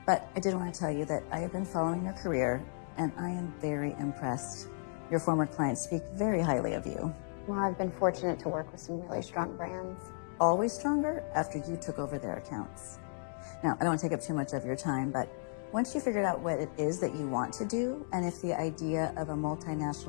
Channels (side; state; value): right; silent; digital silence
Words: But I did want to tell you that I have been following your career, and I am very impressed. Your former clients speak very highly of you. Well, I've been fortunate to work with some really strong brands. Always stronger after you took over their accounts. Now, I don't want to take up too much of your time, but once you figured out what it is that you want to do, and if the idea of a